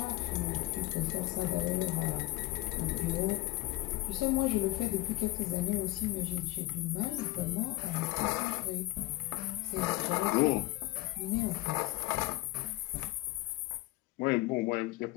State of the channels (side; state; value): right; quieter; 18.2 dB